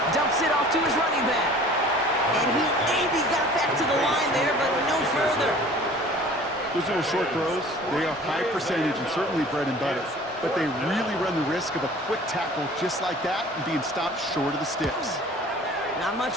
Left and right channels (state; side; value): normal; both; correlation 0.47